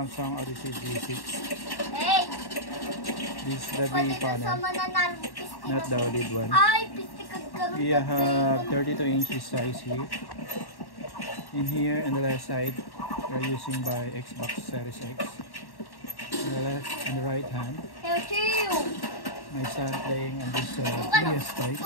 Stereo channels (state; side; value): late; right; 1.1 ms